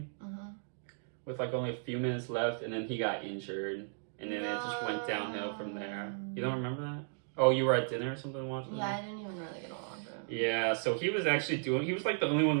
with like only a few minutes left, and then he got injured, and then it just went downhill from there. You don't remember that? Oh, you were at dinner or something watching that? Yeah, I didn't even really get along with him. Yeah, so he was like the only one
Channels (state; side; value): silent; left; digital silence